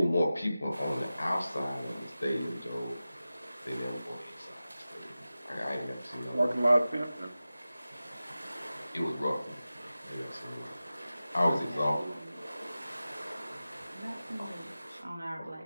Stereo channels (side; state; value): both; inverted; correlation -0.95